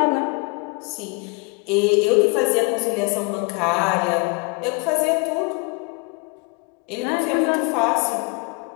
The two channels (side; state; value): right; quieter; 32.2 dB